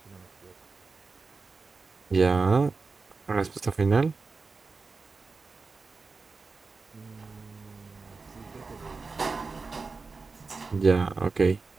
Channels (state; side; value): quieter; left; 4.3 dB